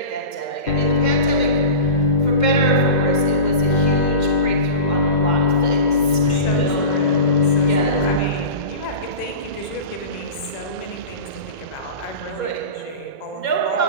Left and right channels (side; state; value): right; late; 2.1 ms